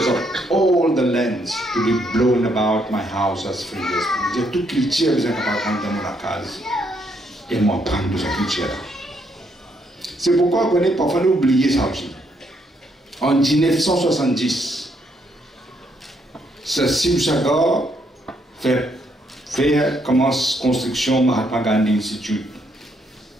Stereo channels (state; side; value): normal; both; correlation 0.73